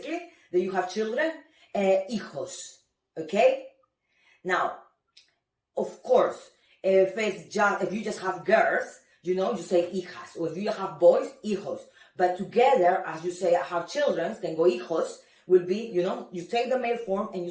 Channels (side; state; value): both; identical; correlation 1.00